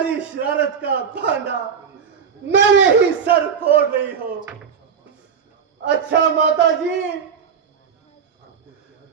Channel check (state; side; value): quieter; left; 6.9 dB